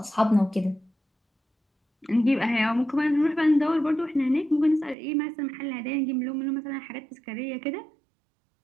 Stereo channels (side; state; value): left; drops out; at 5.0 s